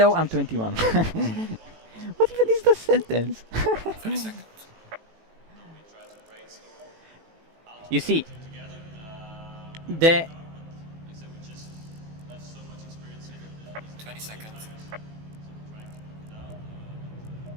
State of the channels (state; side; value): late; left; 18 ms